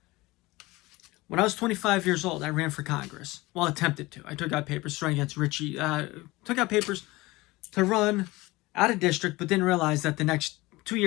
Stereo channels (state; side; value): quieter; right; 21.0 dB